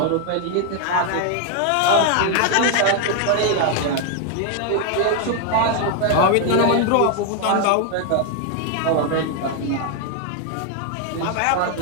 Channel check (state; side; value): different; both; correlation 0.00